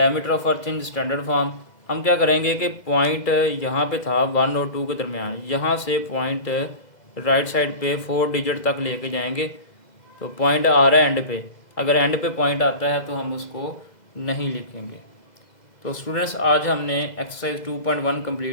of earth in standard form, हम क्या करेंगे कि पॉइंट यहाँ पे था 1 और 2 के दरमियान, यहाँ से पॉइंट राइट साइड पे 4 डिजिट तक लेके जाएंगे। तो पॉइंट आ रहा है एंड पे, अगर एंड पे पॉइंट आता है तो हम उसको नहीं लिखेंगे। तो स्टूडेंट्स आज हमने एक्सरसाइज 2.1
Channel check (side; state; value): right; late; 2.0 ms